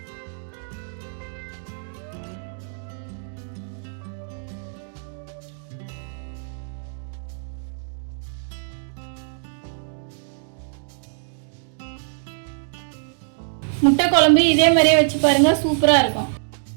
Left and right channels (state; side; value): silent; left; digital silence